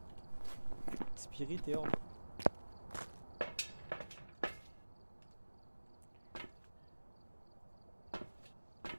Spirit et orbe.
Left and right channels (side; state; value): both; inverted; correlation -1.00